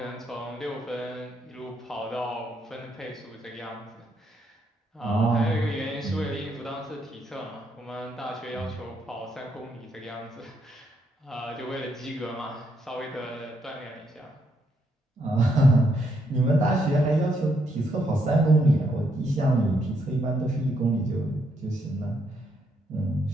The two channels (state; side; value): normal; both; correlation 0.75